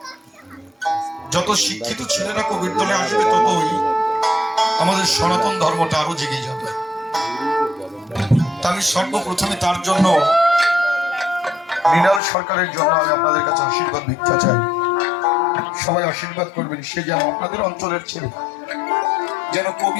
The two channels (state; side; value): drops out; right; at 12.2 s